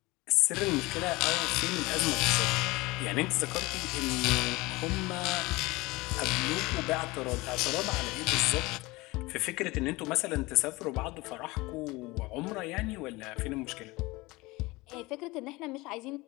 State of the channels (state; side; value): quieter; right; 22.1 dB